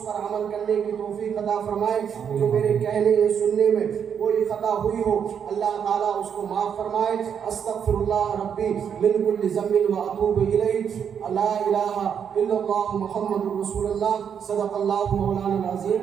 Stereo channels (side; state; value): left; quieter; 7.8 dB